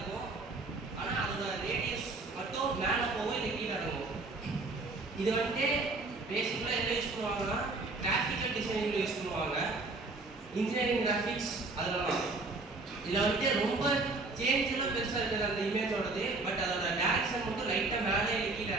ஆனா அதோட ரேடியஸ் மட்டும் மேல போகும் இல்ல கீழ இறங்கும். இது வந்து பேசிக்கலா என்ன யூஸ் பண்ணுவாங்கன்னா கிராஃபிக்கல் டிசைனிங்ல யூஸ் பண்ணுவாங்க. இன்ஜினியரிங் கிராஃபிக்ஸ் அதெல்லாம் இதுல வந்து ரொம்ப சேஞ்ச்லாம் பெருசா இருக்குது அந்த இமேஜோடது. பட் அதோட டைரக்ஷன் மட்டும் லைட்டா மேலே கீழ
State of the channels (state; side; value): quieter; left; 3.4 dB